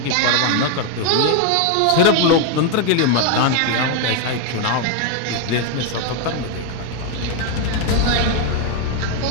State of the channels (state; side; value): different; both; correlation 0.01